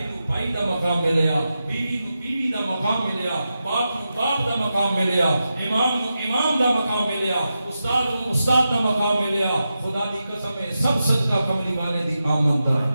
نو بھائی دا مقام ملیا, بیوی نو بیوی دا مقام ملیا, باپ نو باپ دا مقام ملیا, امام نو امام دا مقام ملیا, استاد نو استاد دا مقام ملیا. خدا دی قسم ہے سب صدقہ کملی والے دی آمد دا.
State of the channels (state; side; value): inverted; both; correlation -0.90